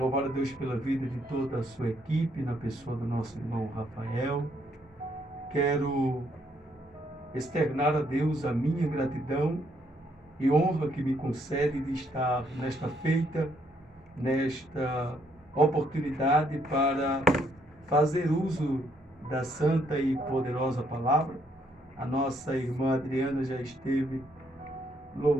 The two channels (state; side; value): normal; both; correlation 0.71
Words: a Deus pela vida de toda a sua equipe, na pessoa do nosso irmão Rafael. Quero externar a Deus a minha gratidão e honra que me concede de estar nesta feita, nesta oportunidade para fazer uso da santa e poderosa palavra. A nossa irmã Adriana já esteve